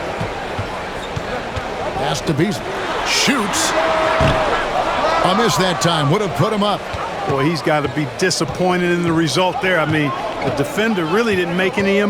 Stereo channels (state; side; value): identical; both; correlation 1.00